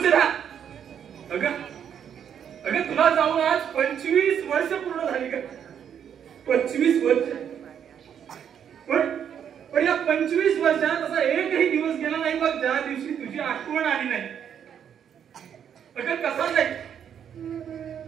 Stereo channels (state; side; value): quieter; left; 8.6 dB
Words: अगं अगं तुला जाऊन आज 25 वर्ष पूर्ण झाली का? 25 वर्ष. पण या 25 वर्षात असा एकही दिवस गेला नाही बघ ज्या दिवशी तुझी आठवण आली नाही. अगं कसा जाईल,